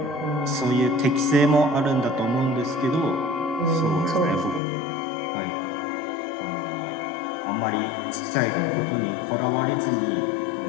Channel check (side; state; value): right; drops out; at 4.6 s